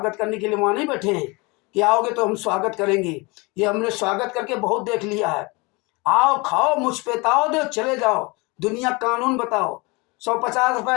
करने के लिए वहां नहीं बैठे हैं कि आओगे तो हम स्वागत करेंगे। ये हमने स्वागत करके बहुत देख लिया है। आओ, खाओ, मुझ पे ताओ दो, चले जाओ, दुनिया कानून बताओ। 150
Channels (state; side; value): quieter; right; 26.4 dB